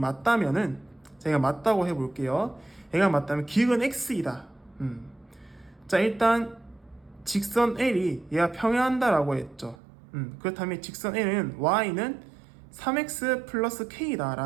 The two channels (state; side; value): drops out; left; at 9.8 s